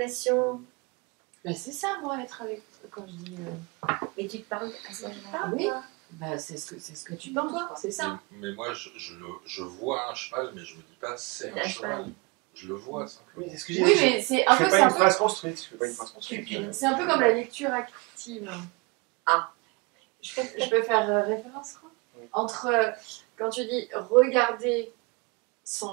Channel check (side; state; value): left; quieter; 28.5 dB